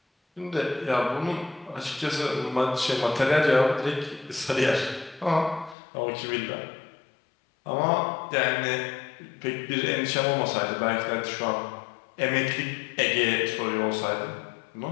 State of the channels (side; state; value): right; drops out; at 5.8 s